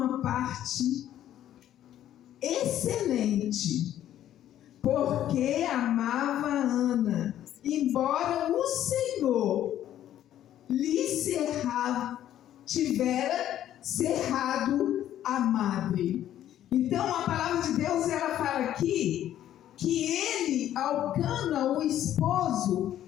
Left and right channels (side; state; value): right; quieter; 11.8 dB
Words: parte excelente, porque amava Ana, embora o Senhor lhe tivera cerrado a madre. Então a palavra de Deus, ela fala aqui que ele, Elcana, o esposo,